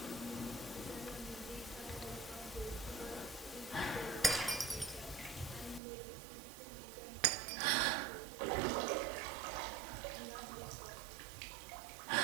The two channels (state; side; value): drops out; left; at 5.8 s